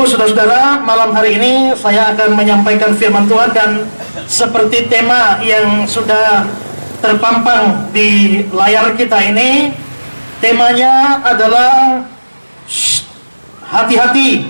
saudara-saudara, malam hari ini saya akan menyampaikan firman Tuhan, dan seperti tema yang sudah terpampang di layar kita ini, temanya adalah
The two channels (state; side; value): inverted; both; correlation -1.00